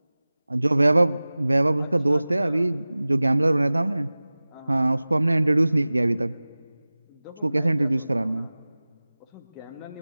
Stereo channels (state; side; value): inverted; both; correlation -0.99